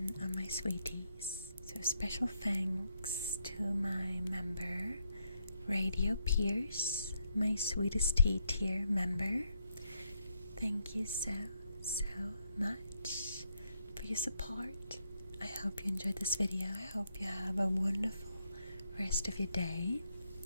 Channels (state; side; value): inverted; both; correlation -0.78